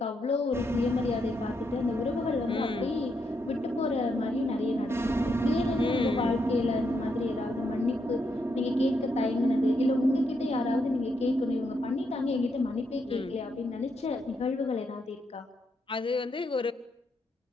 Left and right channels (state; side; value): normal; both; correlation 0.79